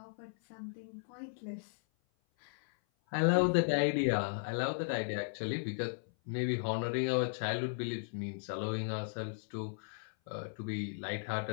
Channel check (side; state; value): right; silent; 54 dB below the other